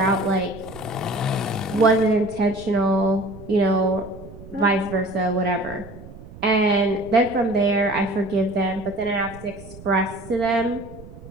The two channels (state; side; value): noise; right; rumble, 17 dB below the sound